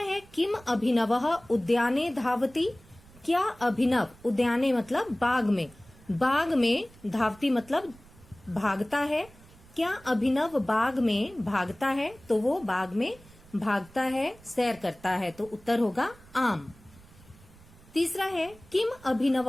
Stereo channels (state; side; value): noise; right; rumble, 24 dB below the sound